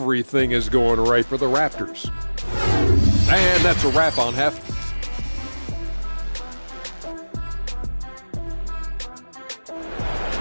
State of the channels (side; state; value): both; inverted; correlation -1.00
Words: is going right for the Raptors. And that's a wrap on half.